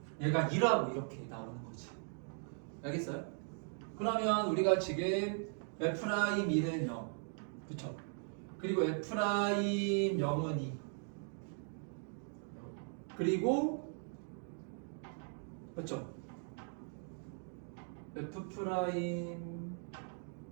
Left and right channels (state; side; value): silent; left; 52 dB below the other